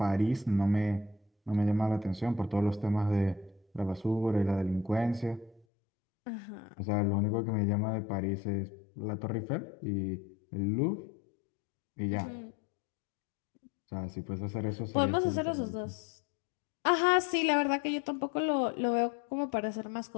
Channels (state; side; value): drops out; right; at 5.7 s